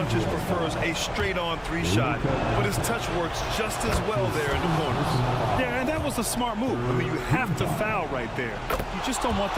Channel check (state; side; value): identical; both; correlation 1.00